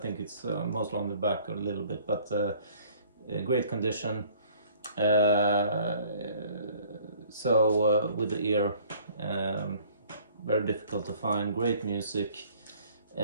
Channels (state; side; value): inverted; both; correlation -0.55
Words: it's mostly on the back a little bit, but great condition. So with the ear, very difficult to find. Great music.